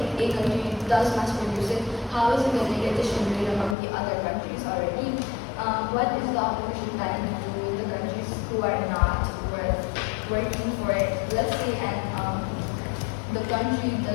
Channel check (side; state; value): right; drops out; at 3.8 s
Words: a country does mass produce it, how is it going to get distributed among the other countries already? What is the opposition planning to do with the countries who are not working for it? Let's say, and the country